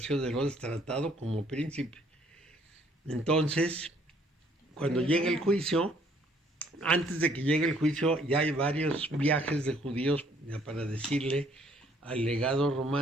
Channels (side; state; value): both; normal; correlation 0.63